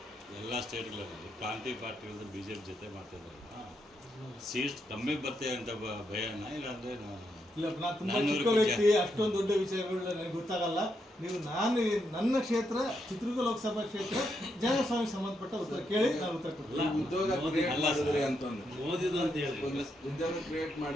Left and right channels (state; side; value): normal; both; correlation 0.80